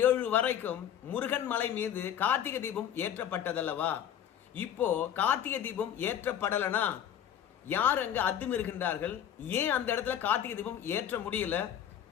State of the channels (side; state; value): right; quieter; 9.9 dB